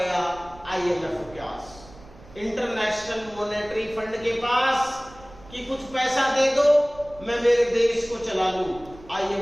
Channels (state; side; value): noise; right; rumble, 21 dB below the sound